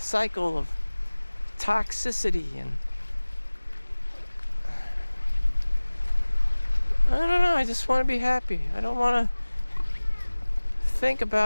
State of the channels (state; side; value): inverted; both; correlation -1.00